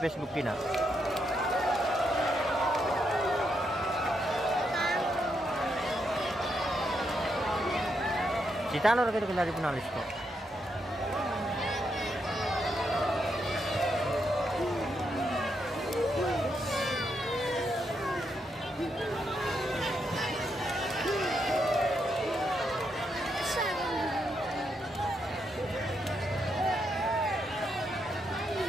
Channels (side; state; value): both; normal; correlation 0.80